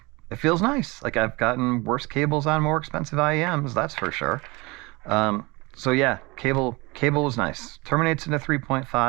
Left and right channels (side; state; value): left; quieter; 24.7 dB